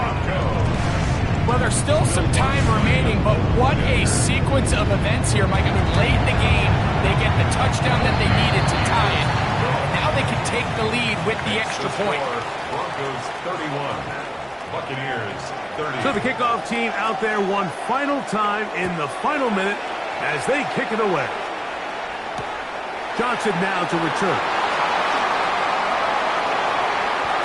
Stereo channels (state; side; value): identical; both; correlation 1.00